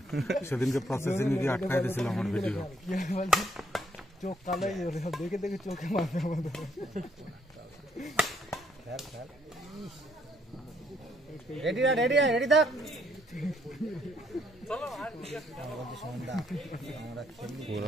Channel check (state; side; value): normal; both; correlation 0.70